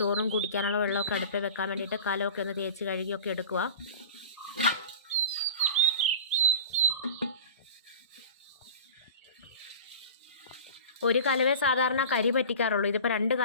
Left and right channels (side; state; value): both; inverted; correlation -0.38